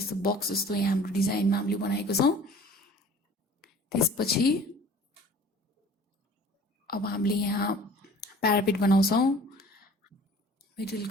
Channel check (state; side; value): normal; both; correlation 0.48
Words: बक्स जस्तो यहाँ हाम्रो डिजाइनमा हामीले बनाएको छौँ। त्यसपछि अब हामीले यहाँ प्यारापेट बनाउँछौँ,